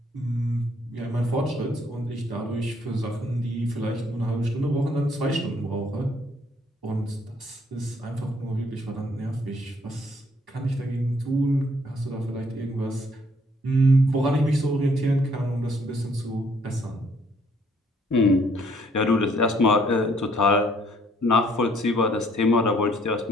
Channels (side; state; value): both; normal; correlation 0.65